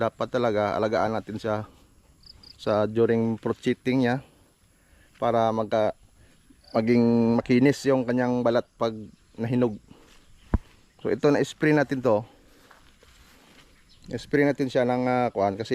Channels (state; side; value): identical; both; correlation 1.00